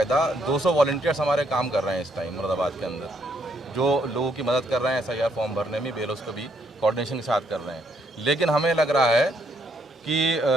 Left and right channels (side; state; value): both; normal; correlation 0.72